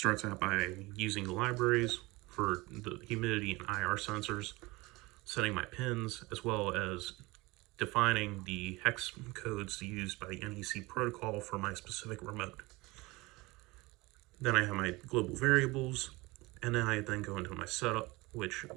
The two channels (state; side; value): quieter; left; 22.5 dB